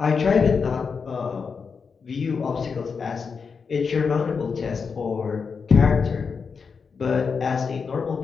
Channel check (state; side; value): quieter; right; 5.5 dB